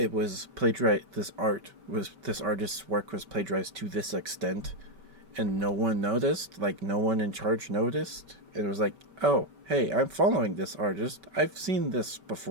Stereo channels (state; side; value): late; left; 5.2 ms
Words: artist's work was plagiarized to this extent, and no one noticed. Like, no one in charge noticed. It was like, oh, hey, I'm following this artist. I've seen this